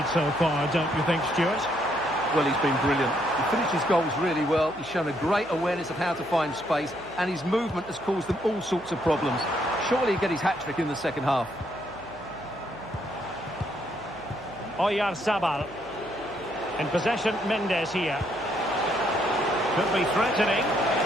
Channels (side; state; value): right; noise; hum, 23 dB below the sound